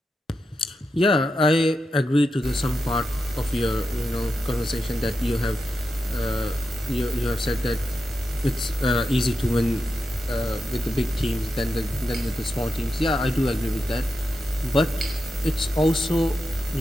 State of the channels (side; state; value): both; normal; correlation 0.88